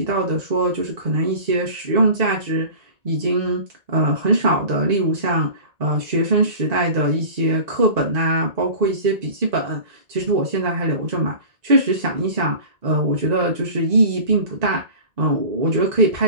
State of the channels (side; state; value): left; late; 1.9 ms